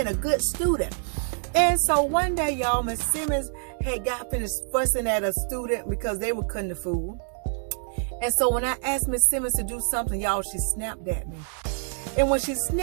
a good student. And so one day, y'all, Miss Simmons had got finished fussing at a student because they were cutting the food. And so when I asked Miss Simmons to do something, y'all, she snapped at me. And when she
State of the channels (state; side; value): silent; left; 61 dB below the other